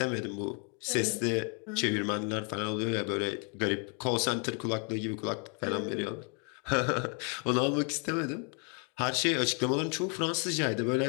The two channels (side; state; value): right; quieter; 38.3 dB